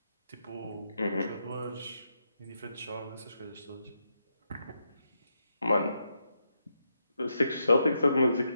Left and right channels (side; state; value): both; inverted; correlation -0.82